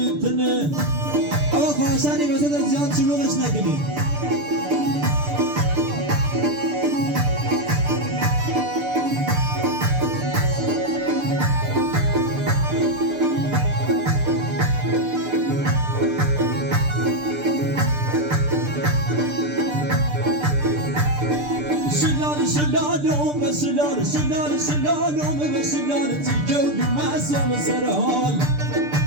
آقا خواهشانی وسط از زیاد شلوغش نکنید شلالوم و شلال تیکه و مزام سر حال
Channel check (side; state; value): left; late; 6.8 ms